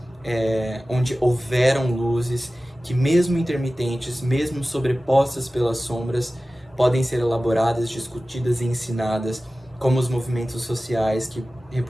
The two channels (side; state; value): both; normal; correlation 0.96